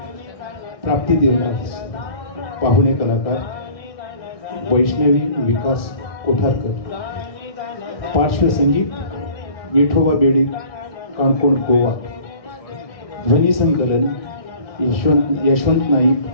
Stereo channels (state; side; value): late; right; 1.6 ms